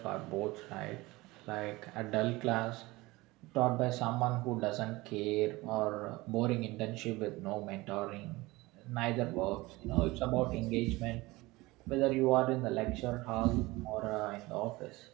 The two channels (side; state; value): left; quieter; 21.1 dB